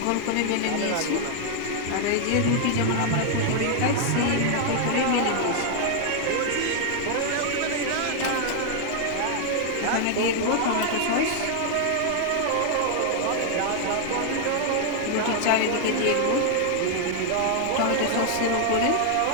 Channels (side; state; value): both; different; correlation 0.00